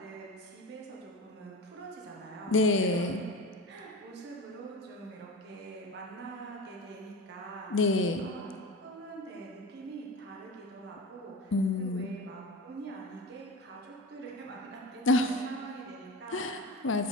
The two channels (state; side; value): normal; both; correlation 0.29